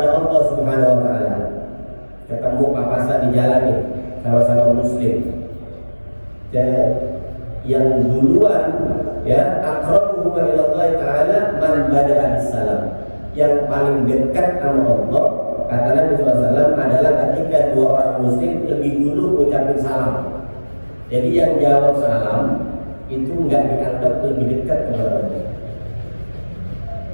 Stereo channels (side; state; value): both; inverted; correlation -1.00